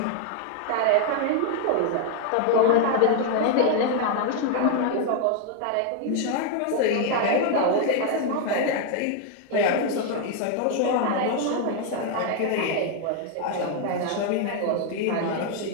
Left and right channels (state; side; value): different; both; correlation 0.01